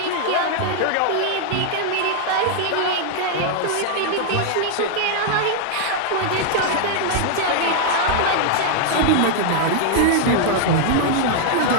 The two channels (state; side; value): different; both; correlation 0.00